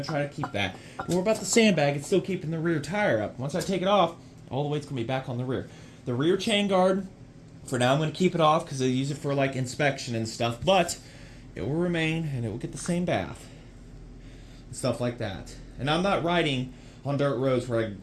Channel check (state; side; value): identical; both; correlation 1.00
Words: try to keep that. But what about the sandbag? It's still keeping the rear tire up. Once I take it off, all the weight's going to be back on the rear. The rear chain guard, for now I'm going to keep it off because I use it for like inspection and stuff, but it will remain and it will get the same bath and stuff like that. And I'm not riding on dirt roads where I